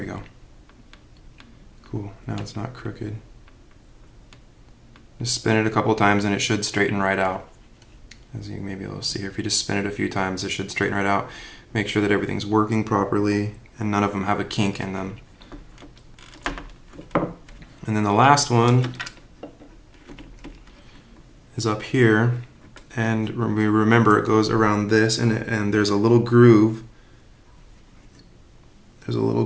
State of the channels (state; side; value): identical; both; correlation 1.00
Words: we go. Cool, now it's not crooked. Just spin it a couple times and it should straighten right out. As you may be able to see here, if you just spin it a few times, it should straighten right out. Make sure that everything's working properly and none of them have a kink in them. And then the last one is up here, and remember it goes around this, and there's a little groove. There's a little